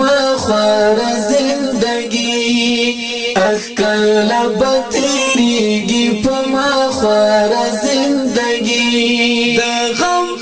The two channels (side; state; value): both; identical; correlation 1.00